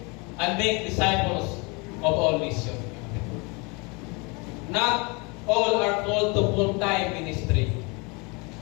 and make disciples of all nations. Not all are called to full-time ministry.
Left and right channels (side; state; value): right; quieter; 29.3 dB